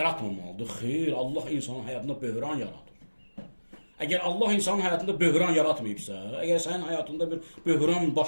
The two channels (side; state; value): both; inverted; correlation -1.00